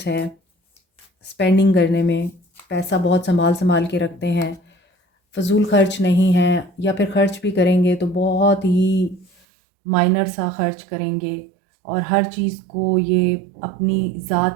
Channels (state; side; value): drops out; left; at 9.3 s